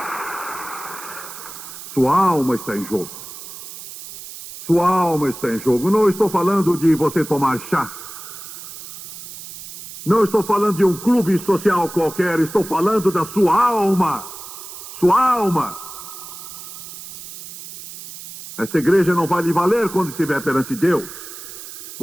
Sua alma está em jogo. Sua alma está em jogo. Não estou falando de você tomar chá. Não estou falando de um clube social qualquer. Estou falando da sua alma. Sua alma. Essa igreja não vai lhe valer quando estiver perante Deus.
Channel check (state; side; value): noise; right; hiss, 13 dB below the sound